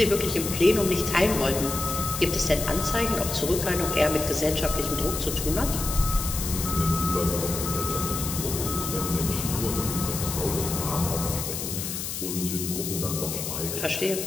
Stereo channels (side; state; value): left; noise; hiss, 5 dB below the sound